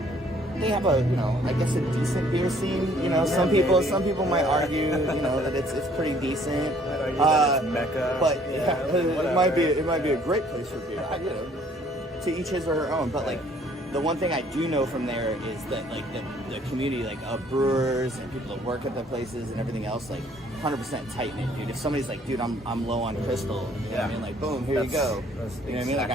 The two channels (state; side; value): normal; both; correlation 0.60